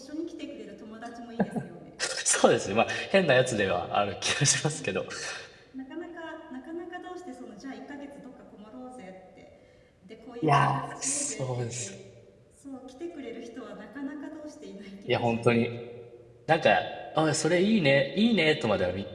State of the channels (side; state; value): both; identical; correlation 1.00